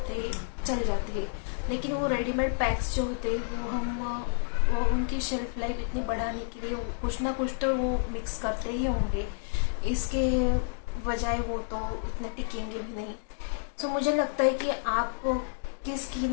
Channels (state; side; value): silent; right; digital silence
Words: हैं, चल जाते हैं। लेकिन वो रेडीमेड पैक्स जो होते हैं वो उनकी शेल्फ लाइफ इतनी बढ़ाने के लिए कुछ ना कुछ तो वो मिक्स करते ही होंगे, इसके बजाय वो तो इतने टिकेंगे भी नहीं। तो मुझे लगता है कि आप की